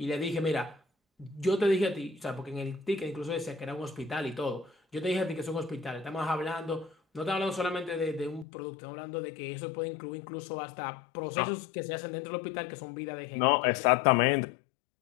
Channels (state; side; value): drops out; right; at 8.5 s